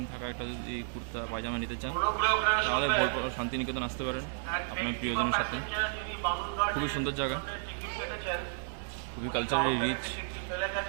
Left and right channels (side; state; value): left; silent; 56 dB below the other